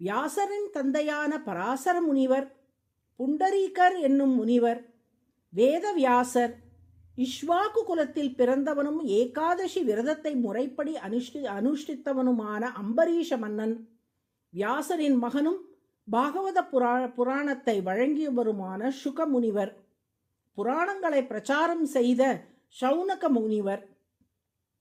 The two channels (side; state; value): both; identical; correlation 1.00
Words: வியாசரின் தந்தையான பராசர முனிவர், புண்டரீகர் என்னும் முனிவர், வேதவியாசர், இஷ்வாக்கு குலத்தில் பிறந்தவனும் ஏகாதசி விரதத்தை முறைப்படி அனுஷ்டித்தவனுமான அம்பரீஷ மன்னன், வியாசரின் மகனும் பாகவத புராணத்தை வழங்கியவருமான சுக முனிவர், புராணங்களை பிரச்சாரம் செய்த சௌனக முனிவர்,